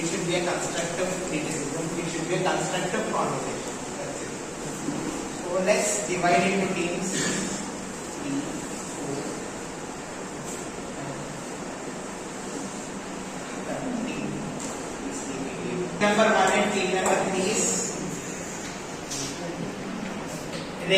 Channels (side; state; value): both; identical; correlation 1.00